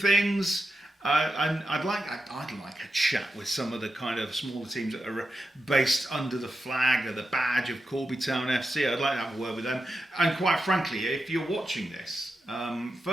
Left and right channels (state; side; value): normal; both; correlation 0.89